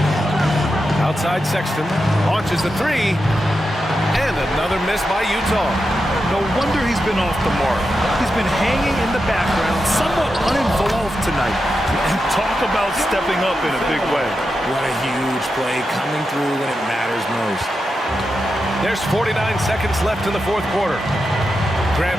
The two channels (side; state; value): both; normal; correlation 0.88